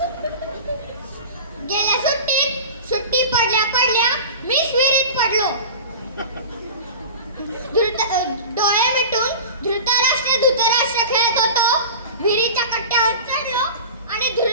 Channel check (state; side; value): inverted; both; correlation -0.33